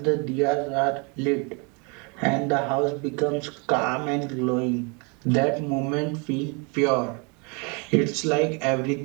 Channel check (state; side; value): quieter; left; 31.2 dB